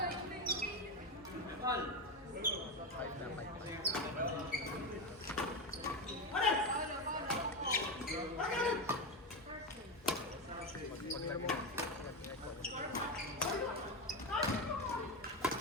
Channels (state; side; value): normal; both; correlation 0.14